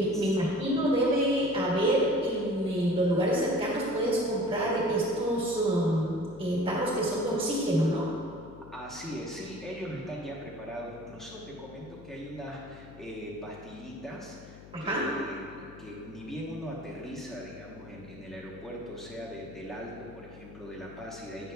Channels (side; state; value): left; noise; hum, 17 dB below the sound